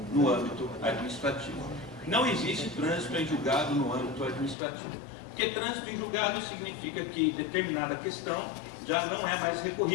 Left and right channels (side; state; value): right; drops out; at 4.5 s